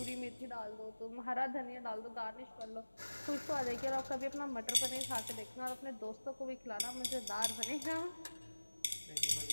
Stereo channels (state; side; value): inverted; both; correlation -1.00